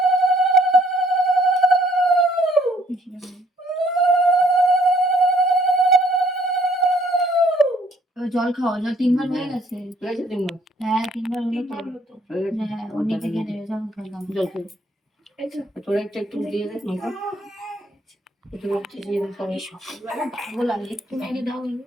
জল খাওয়া, জল 3বার হয়ে গেছে। হ্যাঁ 3বার হলো তো। হ্যাঁ ও নিচে খেয়ে নেবে, জল খেলাম। জল খেয়ে তোরা একটু দিয়ে দেখ না। একটু দিয়ে দেখ, সকালবেলা ভালো লাগে একটু মেরে দাও।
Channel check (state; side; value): normal; both; correlation 0.63